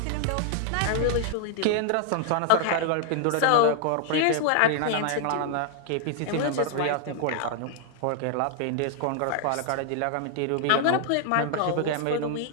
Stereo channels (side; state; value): both; different; correlation 0.00